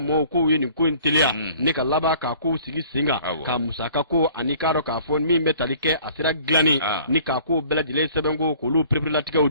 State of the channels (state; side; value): inverted; both; correlation -0.53